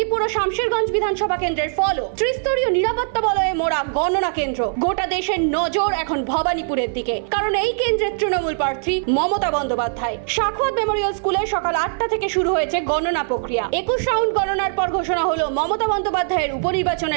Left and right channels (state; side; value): silent; left; digital silence